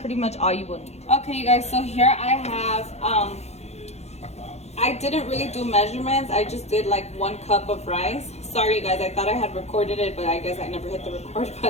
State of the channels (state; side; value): late; right; 0.31 ms